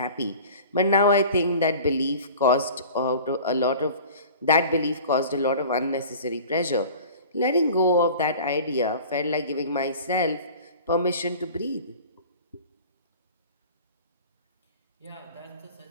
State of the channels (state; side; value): inverted; both; correlation -0.42